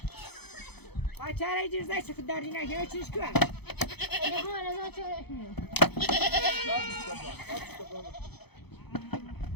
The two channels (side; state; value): right; late; 0.98 ms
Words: ما چاره جزده چه داری نگه چیش کن؟ Ne bu arada çok etmiyor.